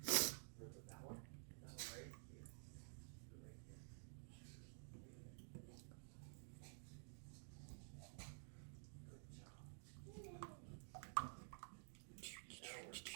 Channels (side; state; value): left; silent; digital silence